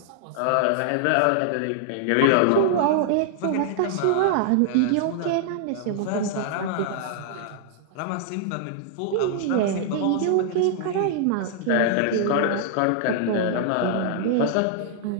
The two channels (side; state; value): both; different; correlation -0.01